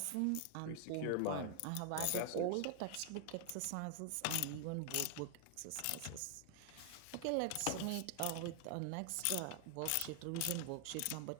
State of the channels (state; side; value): different; both; correlation 0.00